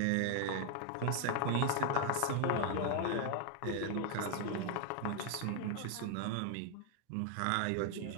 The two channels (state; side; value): different; both; correlation 0.00